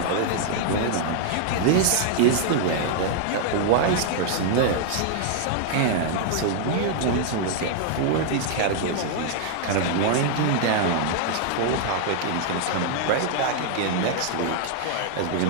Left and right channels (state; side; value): different; both; correlation -0.01